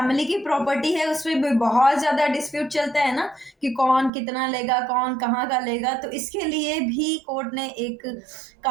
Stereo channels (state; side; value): drops out; left; at 4.1 s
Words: की प्रॉपर्टी है उसमें भी बहुत ज़्यादा डिस्प्यूट चलता है ना, कि कौन कितना लेगा, कौन कहाँ का लेगा। तो इसके लिए भी कोर्ट ने एक